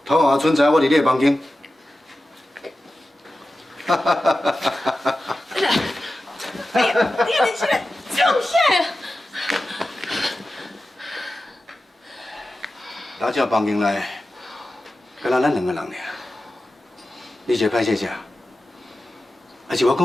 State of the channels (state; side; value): normal; both; correlation 0.94